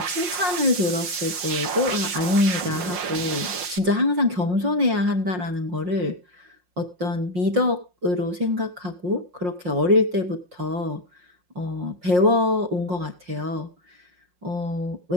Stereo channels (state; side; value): late; left; 5.6 ms